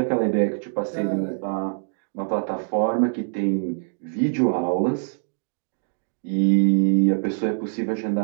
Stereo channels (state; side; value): silent; left; digital silence